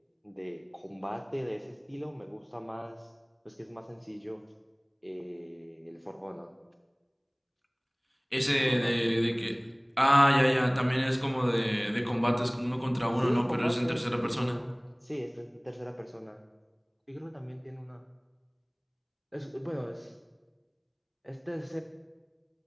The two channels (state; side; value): identical; both; correlation 1.00